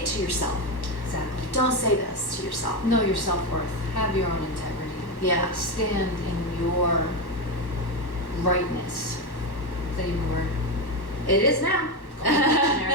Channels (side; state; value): right; late; 1.1 ms